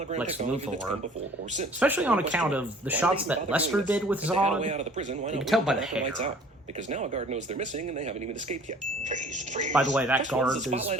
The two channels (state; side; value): normal; both; correlation 0.50